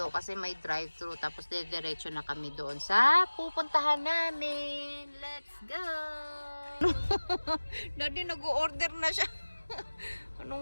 kasi may drive-thru. Tapos, diretso na kami doon sa pupuntahan namin. Let's go! Daddy, nag-order na siya.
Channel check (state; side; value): inverted; both; correlation -1.00